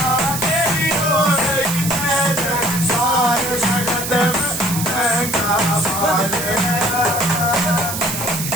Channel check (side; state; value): right; noise; hiss, 5 dB below the sound